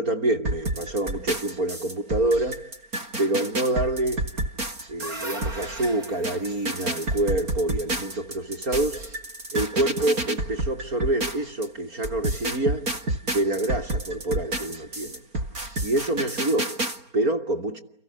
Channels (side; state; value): left; late; 4.3 ms